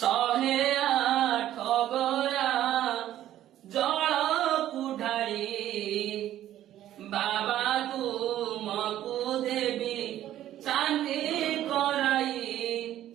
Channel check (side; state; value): left; quieter; 12.6 dB